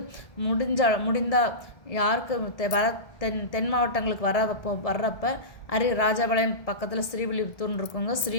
முடிந்தால் யாருக்கு தென் மாவட்டங்களுக்கு வர்றப்ப ராஜபாளையம் பக்கத்தில் ஸ்ரீவில்லிபுத்தூர்னு இருக்குங்க.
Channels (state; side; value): late; right; 1.7 ms